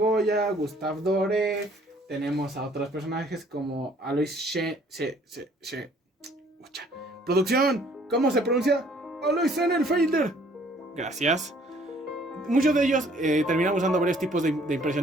Gustave Doré. Tenemos a otros personajes como Alois Producción, ¿cómo se pronuncia? Alois Sennenfelder. Gracias. Muchos de ellos terminan usando varios tipos de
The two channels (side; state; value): both; normal; correlation 0.59